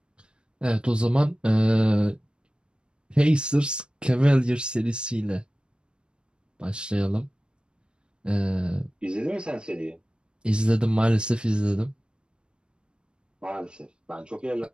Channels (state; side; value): late; left; 0.054 ms